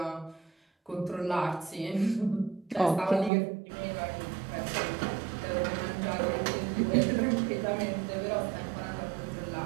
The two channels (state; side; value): drops out; left; at 3.3 s